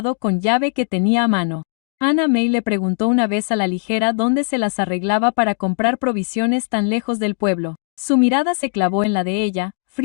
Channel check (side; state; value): right; silent; 59 dB below the other